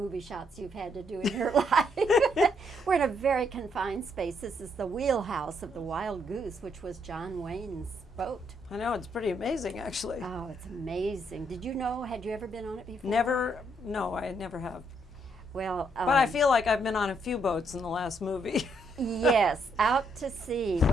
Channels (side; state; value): both; normal; correlation 0.73